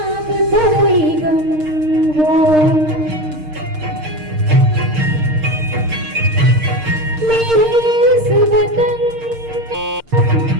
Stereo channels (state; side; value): late; left; 6.5 ms